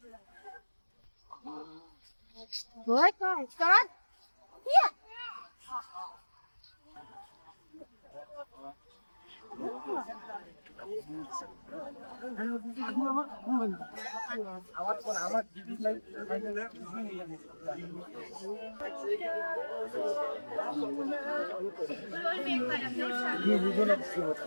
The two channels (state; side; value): inverted; both; correlation -1.00